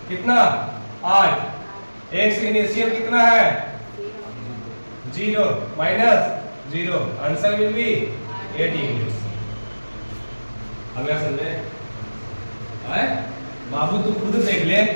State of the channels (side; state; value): both; inverted; correlation -1.00